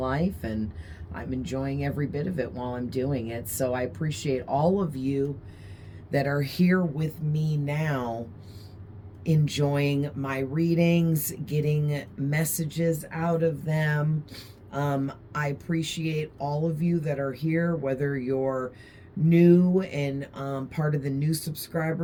and I'm enjoying every bit of it while I'm doing it. So I appreciate all of you that are here with me now, enjoying my readings, getting messages out of them. I appreciate all of you that are here, whether you're new and part of the new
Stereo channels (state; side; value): identical; both; correlation 1.00